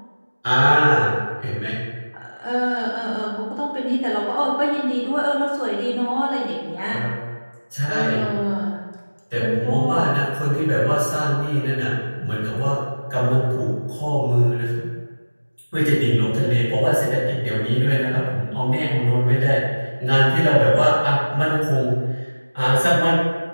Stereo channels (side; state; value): both; inverted; correlation -1.00